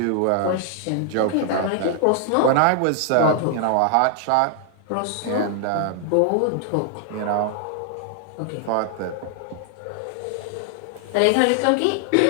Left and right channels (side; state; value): both; different; correlation 0.00